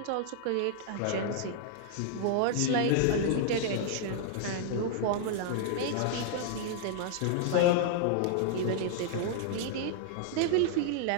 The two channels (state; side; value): different; both; correlation -0.01